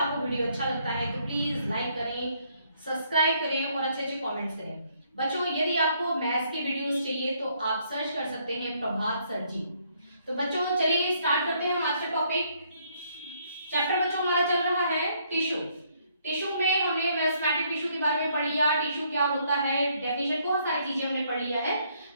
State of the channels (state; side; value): inverted; both; correlation -0.68